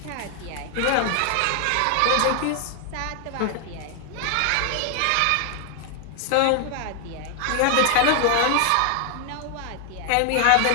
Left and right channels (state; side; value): different; both; correlation 0.00